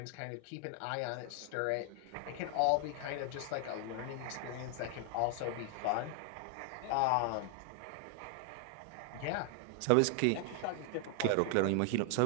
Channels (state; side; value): different; both; correlation 0.00